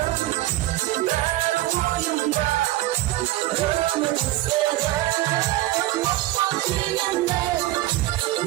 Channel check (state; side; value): quieter; left; 16.5 dB